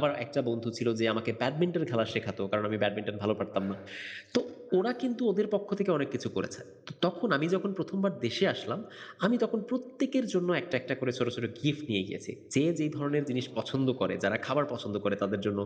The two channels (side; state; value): both; identical; correlation 1.00